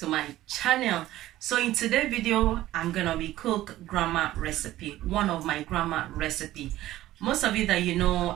my channel. So in today's video, I'm gonna be cook grandma recipe, one of my grandma recipe. Most of you that you know,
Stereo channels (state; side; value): quieter; left; 15.0 dB